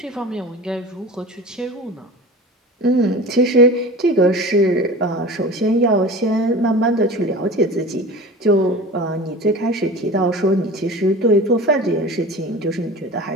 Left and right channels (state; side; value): normal; both; correlation 0.34